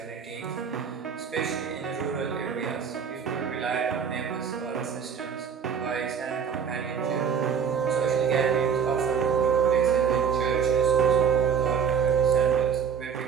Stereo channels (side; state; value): left; quieter; 7.0 dB